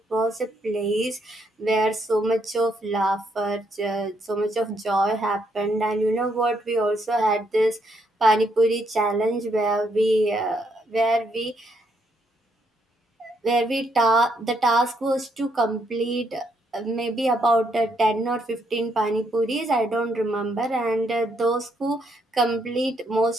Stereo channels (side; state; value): both; normal; correlation 0.74